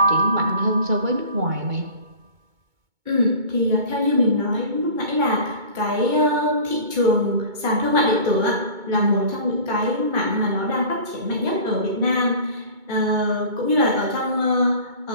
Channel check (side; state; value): left; late; 2.2 ms